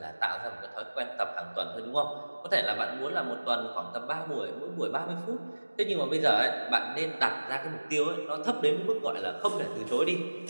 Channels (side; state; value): both; inverted; correlation -1.00